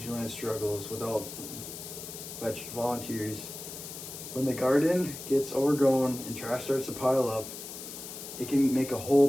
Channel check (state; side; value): noise; left; hiss, 10 dB below the sound